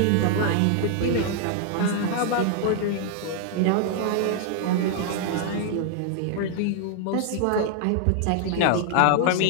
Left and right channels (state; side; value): different; both; correlation 0.00